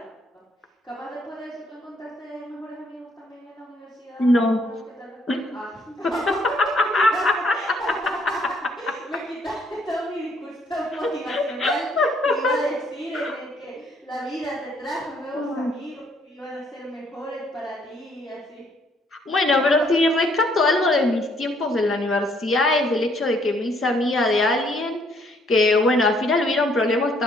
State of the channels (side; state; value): both; normal; correlation 0.66